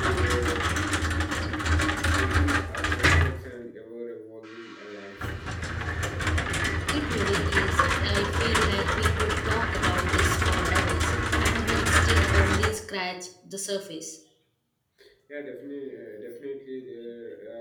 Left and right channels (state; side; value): identical; both; correlation 1.00